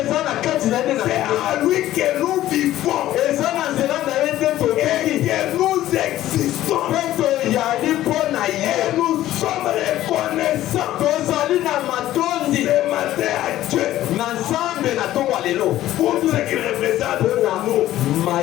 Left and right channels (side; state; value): right; quieter; 14.0 dB